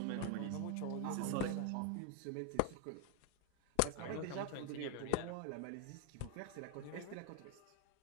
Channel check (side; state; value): both; different; correlation 0.00